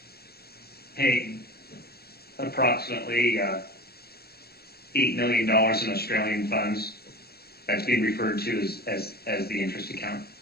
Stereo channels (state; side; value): late; right; 0.46 ms